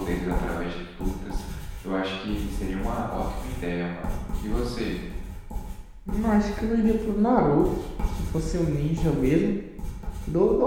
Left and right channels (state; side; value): identical; both; correlation 1.00